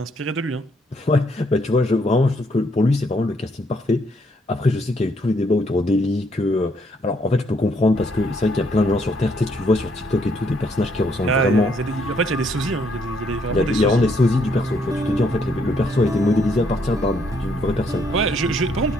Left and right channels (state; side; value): normal; both; correlation 0.71